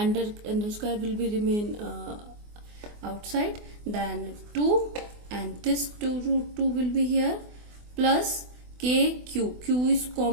square will be remain outside, then 2 and this 2 root 2 will be here plus K Q, Q is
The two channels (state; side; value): late; left; 24 ms